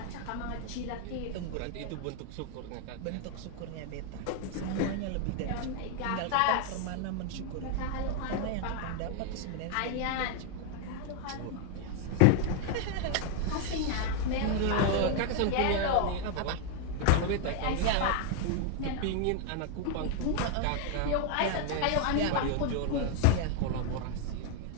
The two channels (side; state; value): both; different; correlation 0.00